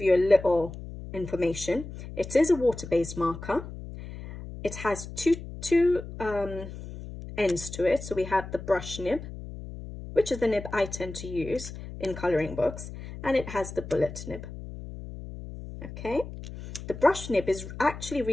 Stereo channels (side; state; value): left; noise; hum, 11 dB below the sound